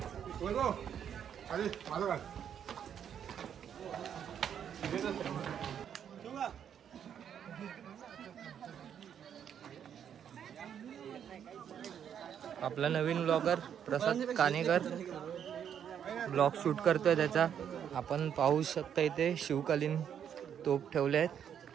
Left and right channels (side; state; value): left; quieter; 8.7 dB